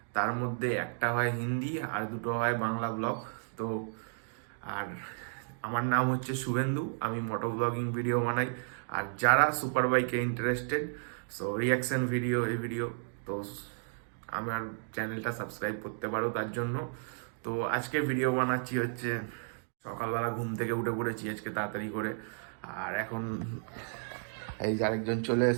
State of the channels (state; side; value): silent; left; digital silence